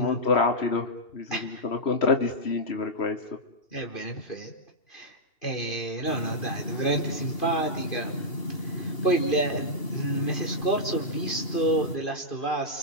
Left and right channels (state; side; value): late; right; 2.5 ms